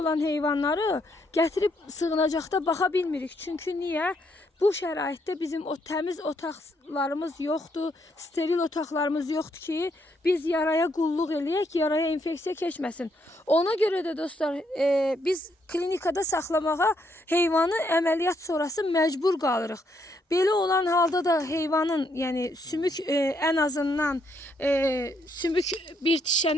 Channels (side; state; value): both; normal; correlation 0.74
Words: heyvanları gətirib sığınacaqda baxa bilmirik. Çünki niyə? Bu şəraitdə bizim o təmiz otaqlarımız yoxdur, steril otaqlarımız yoxdur ki, biz yaraya qulluq eləyək, yaraya infeksiya keçməsin. Ona görə də dostlar, biz klinikada saxlamağa heyvanı əməliyyat sonrası məcbur qalırıq. Belə olan halda da heyvanın, yəni sümük ən azından sümük bir